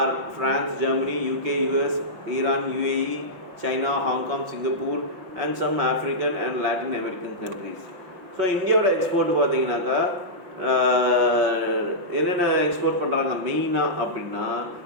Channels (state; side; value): late; left; 5.7 ms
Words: France, Germany, UK, US, Iran, UAE, China, Hong Kong, Singapore and some African and Latin American countries. So இந்தியாவோட export பார்த்தீங்கன்னாக்கா என்னென்ன export பண்ணுறாங்க மெயினாக அப்படின்னா